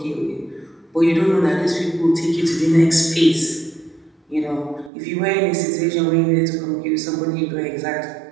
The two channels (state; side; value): drops out; left; at 4.9 s